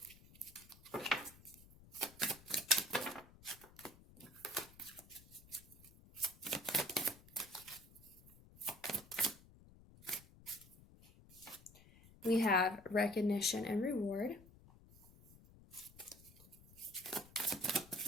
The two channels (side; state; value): left; noise; rumble, 22 dB below the sound